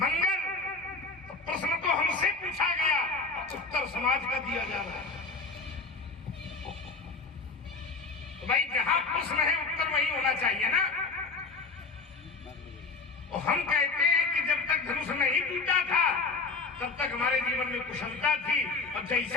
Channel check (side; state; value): right; quieter; 3.9 dB